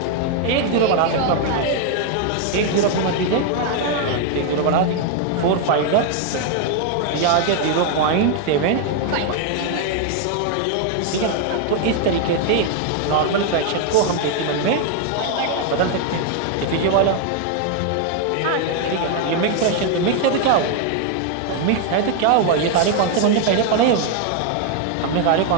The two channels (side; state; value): both; different; correlation 0.00